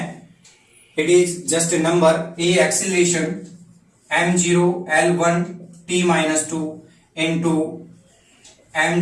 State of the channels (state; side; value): identical; both; correlation 1.00